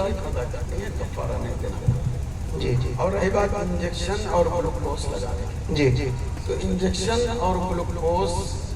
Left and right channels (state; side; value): identical; both; correlation 1.00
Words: قضا کرنی ہے، کفارہ نہیں دینا۔ اور رہی بات انجیکشن اور گلوکوز لگانے کی، تو انجیکشن اور گلوکوز